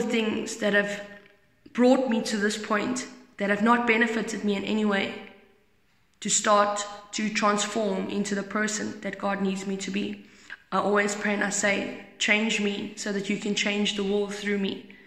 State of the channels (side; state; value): both; identical; correlation 1.00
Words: things that have brought me to this point, that have not benefited me in any way, to start to transform into the person that God needs me to be. I always pray and I say, change me so that you can change the world through me.